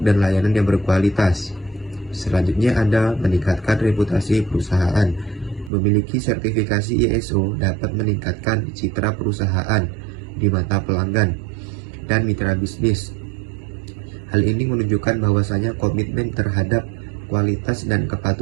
layanan yang berkualitas. Selanjutnya ada meningkatkan reputasi perusahaan. Memiliki sertifikasi ISO dapat meningkatkan citra perusahaan di mata pelanggan dan mitra bisnis. Hal ini menunjukkan bahwasanya komitmen terhadap kualitas dan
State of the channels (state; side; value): drops out; left; at 5.7 s